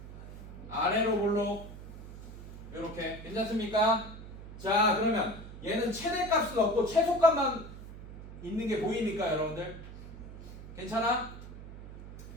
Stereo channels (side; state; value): right; noise; hum, 13 dB below the sound